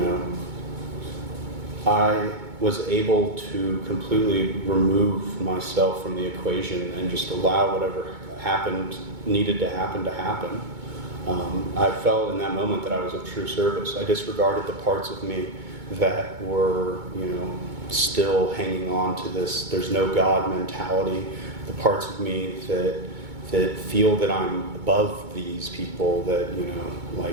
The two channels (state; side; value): late; left; 2.2 ms